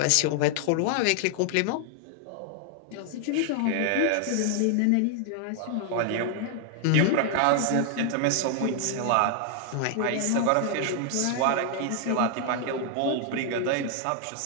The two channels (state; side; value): different; both; correlation 0.00